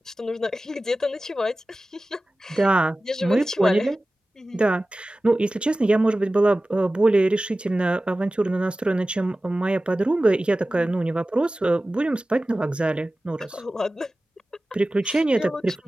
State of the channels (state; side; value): normal; both; correlation 0.96